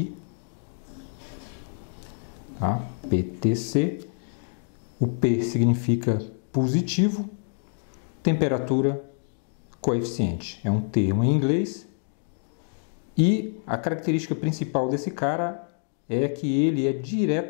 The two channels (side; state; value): right; silent; digital silence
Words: tá? PTC. O P significa positivo, temperatura, coeficiente. É um termo em inglês e a característica principal desse cara é que ele é